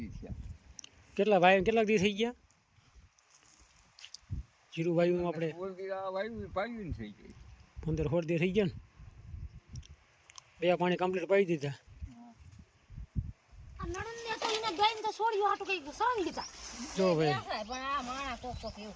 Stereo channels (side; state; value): both; identical; correlation 1.00